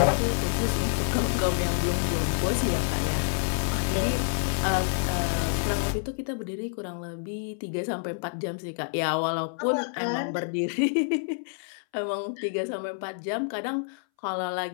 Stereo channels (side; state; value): right; silent; 60 dB below the other